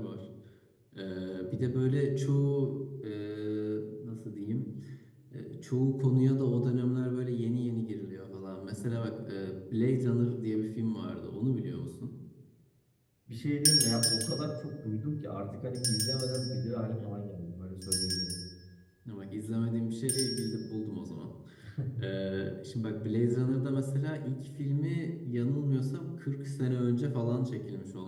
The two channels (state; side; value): identical; both; correlation 1.00